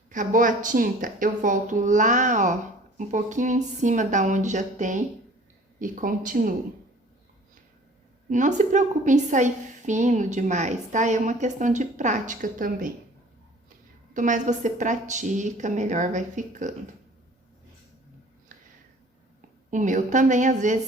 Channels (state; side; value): normal; both; correlation 0.49